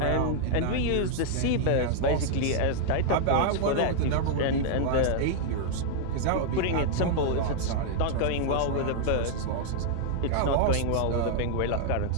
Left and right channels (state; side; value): different; both; correlation -0.01